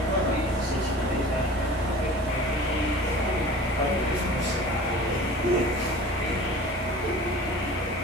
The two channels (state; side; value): normal; both; correlation 0.41